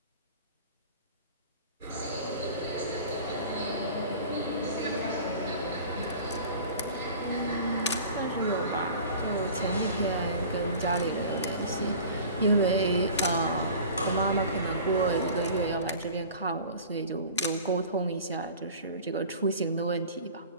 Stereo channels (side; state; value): both; inverted; correlation -0.41